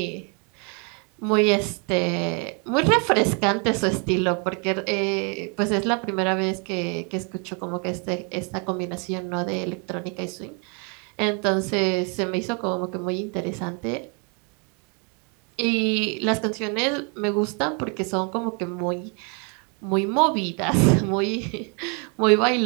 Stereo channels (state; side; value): quieter; left; 35.8 dB